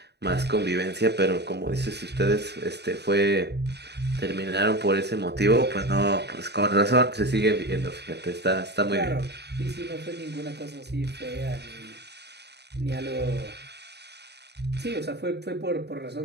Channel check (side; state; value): left; late; 0.49 ms